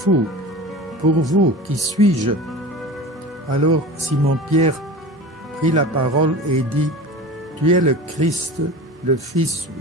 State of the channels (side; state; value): both; normal; correlation 0.34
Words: Pour vous, qui suis-je » Alors Simon-Pierre prit la parole et dit, « Tu es le Christ, le Fils